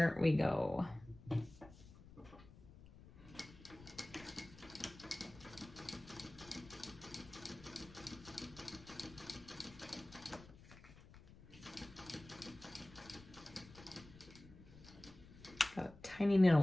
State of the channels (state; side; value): noise; left; rumble, 19 dB below the sound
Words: we go. Got a tiny